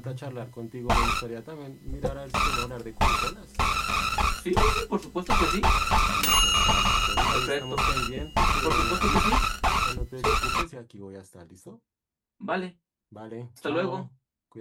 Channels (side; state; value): both; identical; correlation 1.00